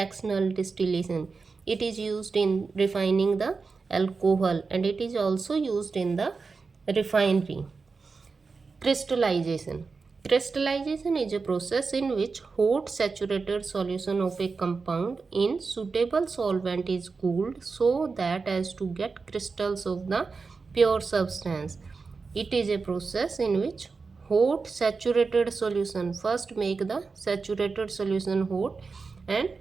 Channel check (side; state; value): left; quieter; 4.5 dB